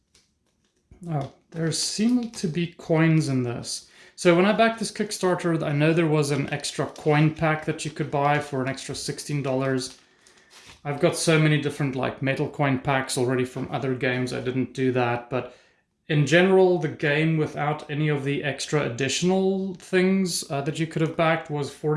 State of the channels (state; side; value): identical; both; correlation 1.00